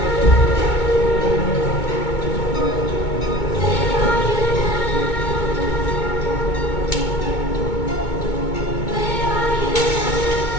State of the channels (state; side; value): late; right; 2.2 ms